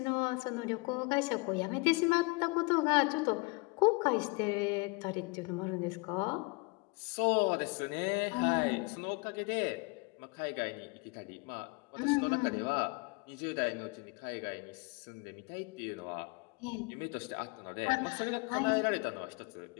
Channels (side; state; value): right; quieter; 28.4 dB